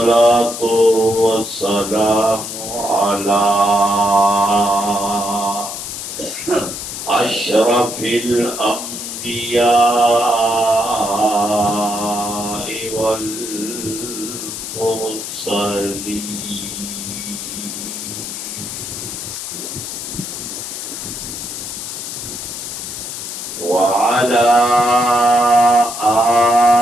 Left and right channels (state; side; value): noise; left; hiss, 7 dB below the sound